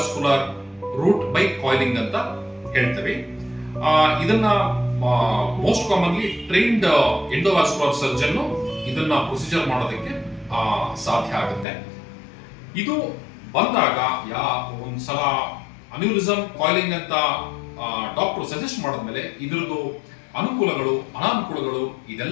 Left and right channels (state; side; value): drops out; right; at 11.7 s